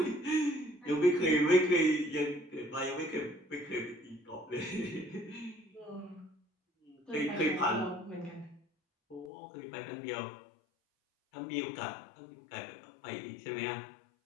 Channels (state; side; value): drops out; right; at 9.3 s